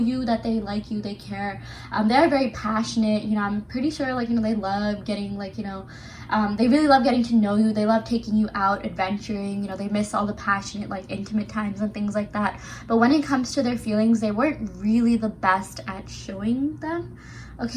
that they like you, they care. They're very passionate, I'm pretty sure, they love getting, they really love getting to know you. They love taking you out, adventuring, they miss all the passionate, intimate times and things like that. But when it comes to their feelings, they weren't really the best at showing them,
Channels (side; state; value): both; identical; correlation 1.00